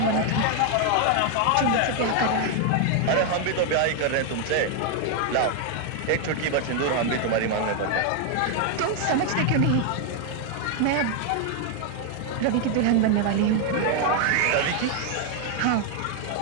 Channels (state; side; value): different; both; correlation 0.00